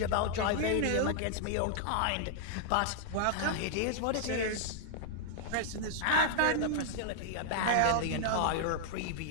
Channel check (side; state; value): both; different; correlation -0.01